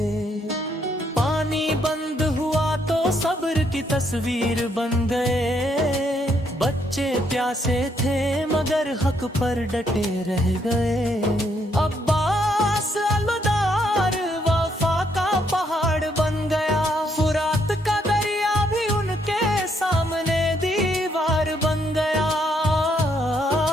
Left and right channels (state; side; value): normal; both; correlation 0.73